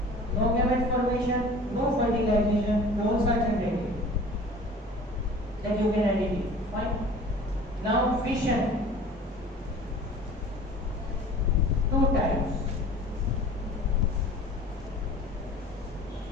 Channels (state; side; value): normal; both; correlation 0.44